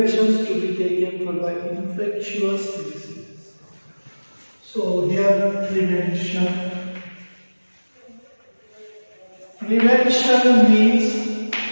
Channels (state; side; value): inverted; both; correlation -1.00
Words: to be taken for the infectious diseases. So here prevention means